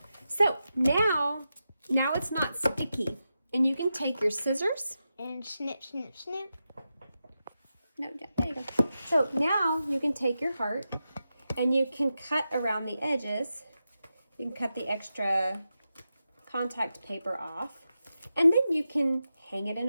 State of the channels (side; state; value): both; inverted; correlation -0.90